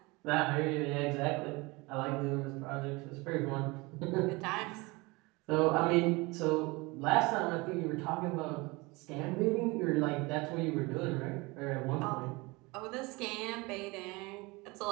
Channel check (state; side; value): quieter; left; 24.6 dB